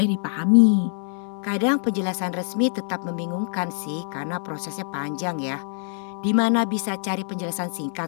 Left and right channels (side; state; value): right; silent; digital silence